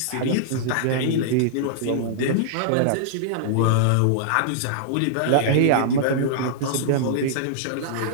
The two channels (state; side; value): different; both; correlation -0.02